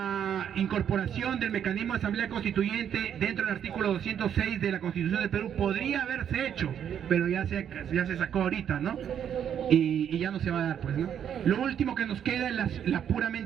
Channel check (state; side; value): quieter; left; 8.9 dB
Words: incorporación del mecanismo de asamblea constituyente dentro del artículo 206 de la Constitución del Perú podría haberse hecho, pero ya se sacó ahorita, ¿no? Y ya no se va a dar, pues, ¿no? Lo último que nos queda es la